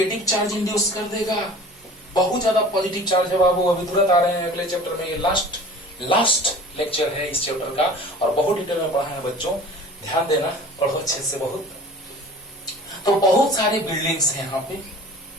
चार्ज इंड्यूस कर देगा। बहुत ज्यादा पॉजिटिव चार्ज है बाबू, अभी तुरंत आ रहे हैं अगले चैप्टर में, ये लास्ट लेक्चर है इस चैप्टर का और बहुत डिटेल में पढ़ा है बच्चों, ध्यान देना, पढ़ो अच्छे से बहुत। तो बहुत सारे बिल्डिंग्स हैं यहाँ पे,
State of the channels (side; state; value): both; normal; correlation 0.42